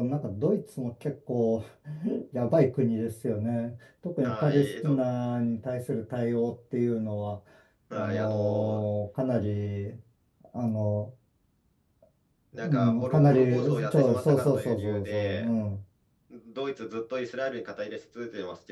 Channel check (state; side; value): identical; both; correlation 1.00